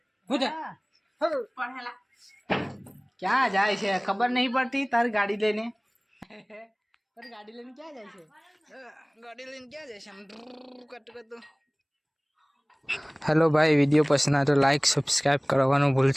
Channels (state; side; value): identical; both; correlation 1.00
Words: क्या जाए छे खबर नहीं पड़ती तार गाड़ी लेने पर गाड़ी लेने क्या जाए छे गाड़ी लेने क्या जाए हम कट कर दो हेलो भाई वीडियो पसंद आए तो लाइक सब्सक्राइब करवानो